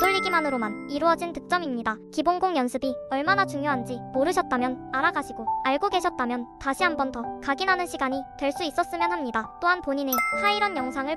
이루어진 득점입니다. 기본공 연습이 얼마나 중요한지 모르셨다면 알아가시고, 알고 계셨다면 다시 한 번 더 각인하는 시간이 될 수 있었으면 합니다. 또한 본인의 하이런 영상을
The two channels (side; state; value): both; identical; correlation 1.00